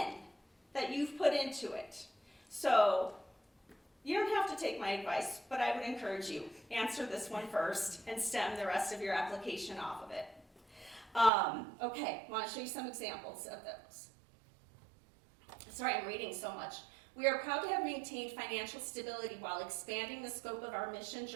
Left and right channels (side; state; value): left; drops out; at 11.3 s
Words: that you've put into it. So you don't have to take my advice, but I would encourage you, answer this one first and stem the rest of your application off of it. Okay, I want to show you some examples of those. Sorry, I'm reading so much. We are proud to have maintained financial stability while expanding the scope of our